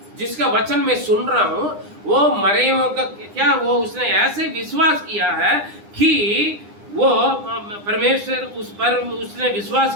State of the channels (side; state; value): left; late; 9.8 ms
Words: जिसका वचन मैं सुन रहा हूं, वो मरे हुओं का क्या, वो उसने ऐसे विश्वास किया है कि वो परमेश्वर उस पर उसने